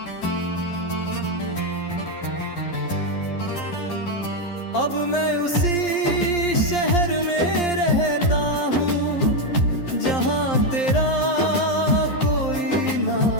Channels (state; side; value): late; right; 11 ms